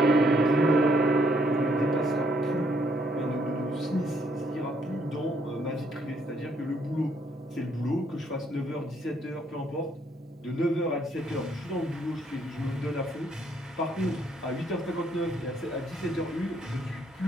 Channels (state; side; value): normal; both; correlation 0.70